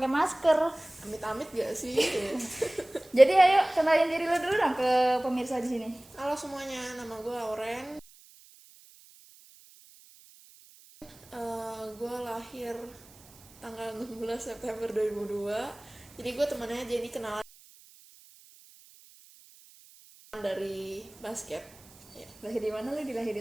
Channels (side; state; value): right; noise; hiss, 24 dB below the sound